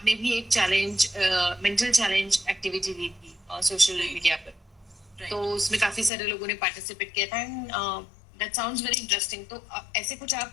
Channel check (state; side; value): drops out; right; at 6.1 s